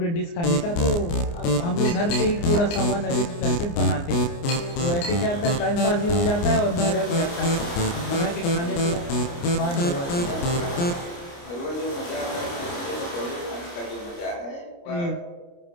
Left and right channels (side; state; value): right; late; 29 ms